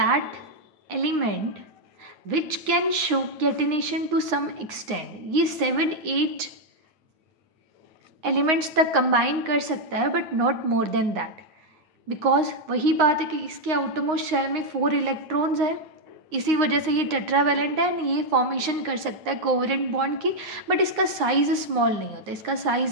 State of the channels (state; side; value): late; left; 9.2 ms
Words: element which can show catenation to some extend. ये 7-8 एलिमेंट्स तक कंबाइन कर सकता है, but not more than that. Because वही बात है कि इसके आउटरमोस्ट शेल में 4 इलेक्ट्रॉन्स है, इसी वजह से ये टेट्रावेलेंट है एंड ये फॉर्मेशन कर सकता है कोवेलेंट बॉन्ड की, बट इसका साइज स्मॉल नहीं होता, इसका